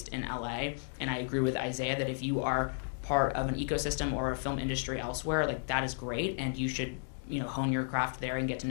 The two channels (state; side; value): silent; right; digital silence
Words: in LA, and I agree with Isaiah that if you are part of an ecosystem or a film industry elsewhere, like, that is great, and you should, you know, hone your craft there and get to